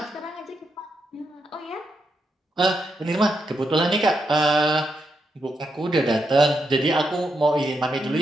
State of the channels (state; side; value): normal; both; correlation 0.82